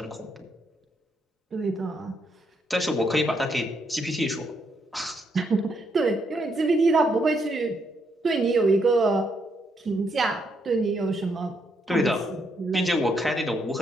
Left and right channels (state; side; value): normal; both; correlation 0.76